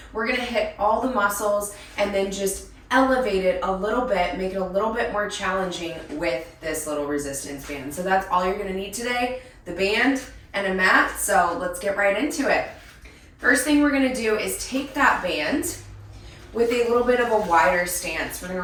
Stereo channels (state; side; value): identical; both; correlation 1.00